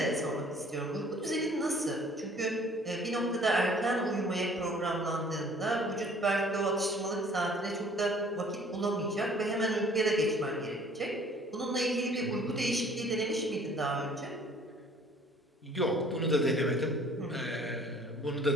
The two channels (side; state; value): both; normal; correlation 0.54